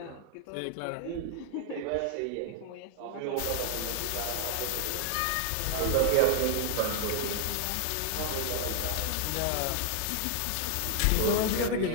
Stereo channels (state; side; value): different; both; correlation 0.00